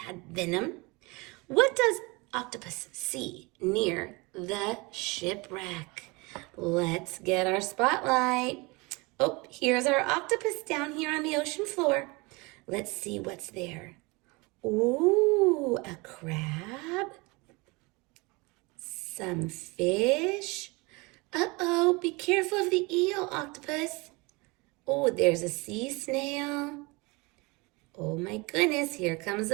venom. What does octopus see near the shipwreck? Let's get our spotlight. Oh, here's our octopus down here on the ocean floor. Let's see what's there. Ooh, a crab. Some fish. Uh-oh, be careful of the eel, octopus. Oh, there's a sea snail. Oh my goodness, here comes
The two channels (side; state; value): left; quieter; 26.1 dB